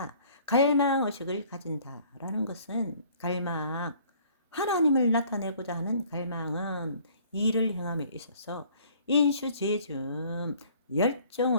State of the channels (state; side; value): inverted; both; correlation -0.56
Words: 갈망의식을 가진다라는 것은 하나님을 나타내고자 하는 갈망은 일을 행함에 있어서 인슈지즘